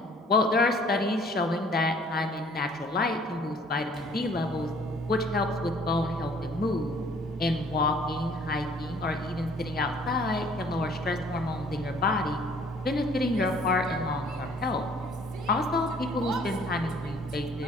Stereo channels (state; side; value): normal; both; correlation 0.57